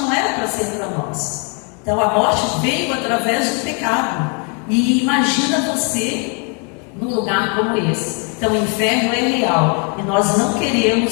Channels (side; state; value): right; quieter; 36.9 dB